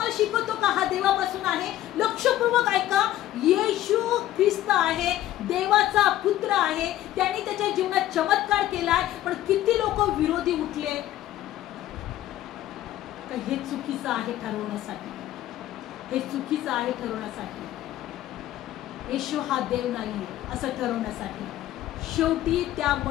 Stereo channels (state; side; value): quieter; right; 13.7 dB